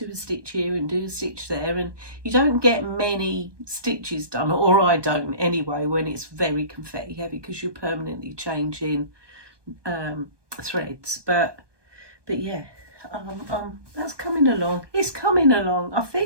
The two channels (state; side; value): late; left; 1.2 ms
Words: a stitch here and do a stitch there, and you don't get many stitches done, or I don't anyway, when it's very confetti heavy, because you're permanently changing threads. But yeah, that's coming along. It's coming along. I